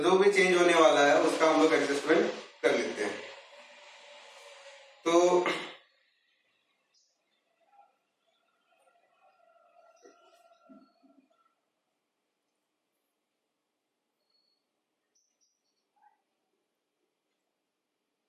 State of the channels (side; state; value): both; identical; correlation 1.00